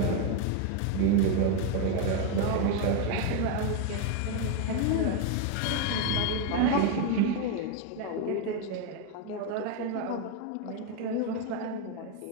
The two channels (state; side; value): different; both; correlation 0.01